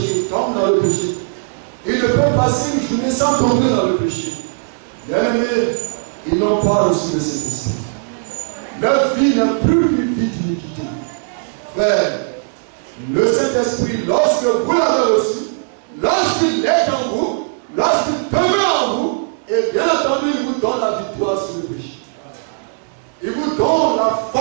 ils tombent dans le péché. Ils ne peuvent passer une journée sans tomber dans le péché. Bien-aimés, ils n'ont pas reçu le Saint-Esprit. Leur vie n'a plus qu'une vie d'iniquité. Frère, le Saint-Esprit, lorsque vous l'avez reçu, lorsqu'il est en vous, lorsqu'il demeure en vous, et bien entendu, il vous donne la victoire sur le péché. Il vous donne la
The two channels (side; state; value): left; silent; digital silence